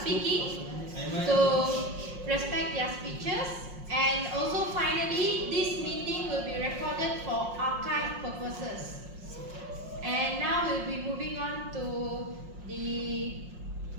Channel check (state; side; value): late; left; 5.6 ms